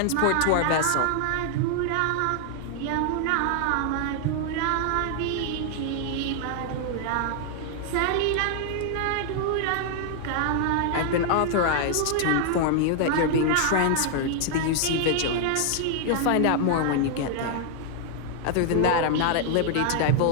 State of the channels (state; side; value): different; both; correlation 0.00